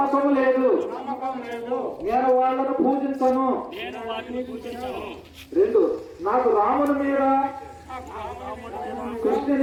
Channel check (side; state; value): both; identical; correlation 1.00